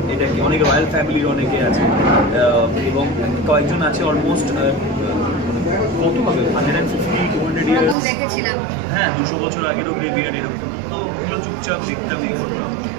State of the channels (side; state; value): left; drops out; at 8.0 s